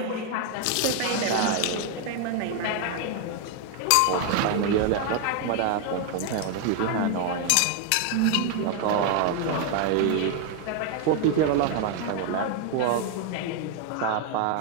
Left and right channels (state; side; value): different; both; correlation 0.01